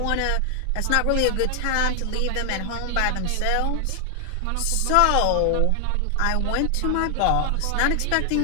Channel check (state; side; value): different; both; correlation 0.00